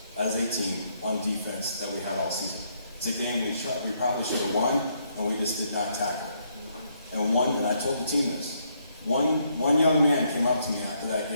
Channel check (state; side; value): inverted; both; correlation -0.73